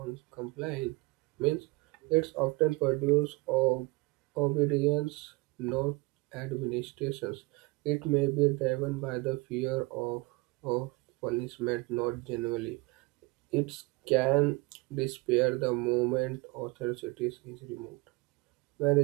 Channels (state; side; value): quieter; left; 24.5 dB